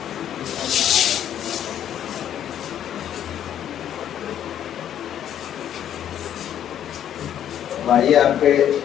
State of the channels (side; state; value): right; quieter; 10.3 dB